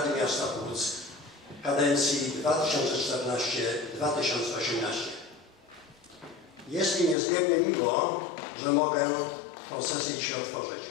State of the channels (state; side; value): drops out; right; at 7.2 s